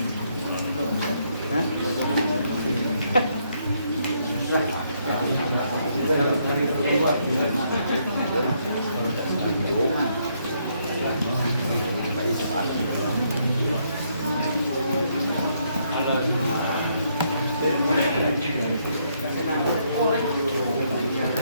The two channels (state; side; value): inverted; both; correlation -0.73